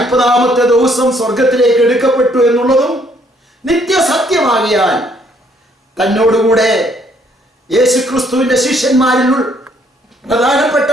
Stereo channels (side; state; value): both; normal; correlation 0.66